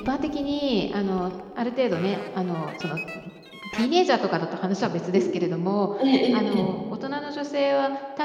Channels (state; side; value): identical; both; correlation 1.00